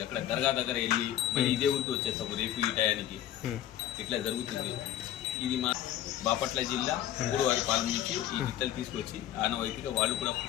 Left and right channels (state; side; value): quieter; right; 12.0 dB